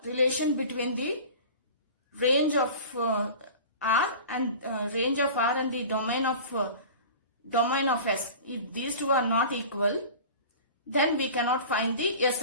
relation between the range of R and the domain of S, if these two are not equal, then we cannot find the S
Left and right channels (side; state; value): both; inverted; correlation -0.38